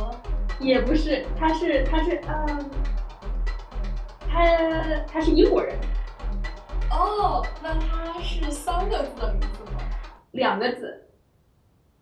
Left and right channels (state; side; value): identical; both; correlation 1.00